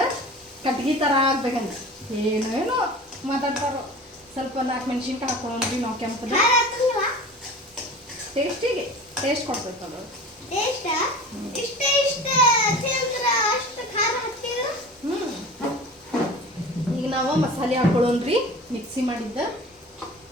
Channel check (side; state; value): both; normal; correlation 0.38